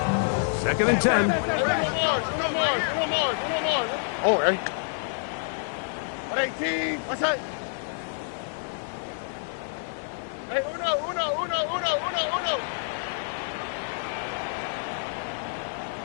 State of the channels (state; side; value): silent; right; digital silence